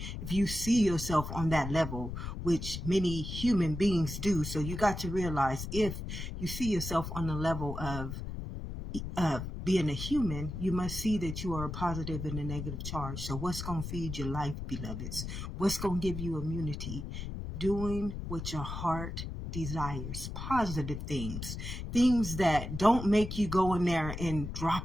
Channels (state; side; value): noise; left; rumble, 6 dB below the sound